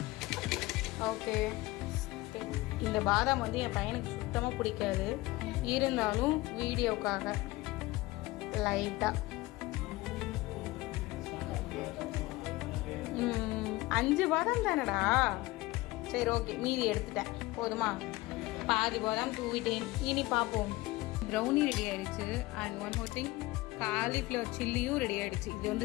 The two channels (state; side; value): quieter; right; 20.0 dB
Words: ஓகே, இந்த பாதாம் வந்து என் பையனுக்கு சுத்தமாக பிடிக்காது. இருந்தாலும் வீடியோக்காக லைட்டாக 5 பாதாம் தானடா. சரி, ஓகே, மீதி எடுத்துட்டேன். போதுமா? பாதி பாதாம் தூவிட்டேன். இனி பார்ப்போம். ப்ரௌனி ரெடி ஆகிடுச்சு. And one more thing, cauliflower சில்லியும் ரெடி ஆகிடுச்சு. இது